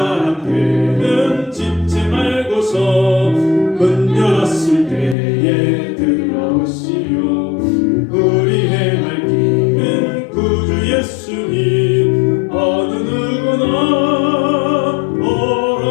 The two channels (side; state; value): right; drops out; at 5.2 s